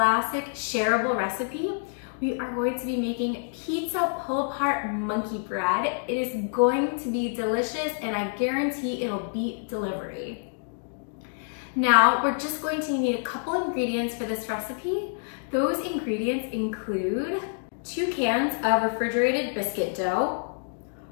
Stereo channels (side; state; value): right; silent; digital silence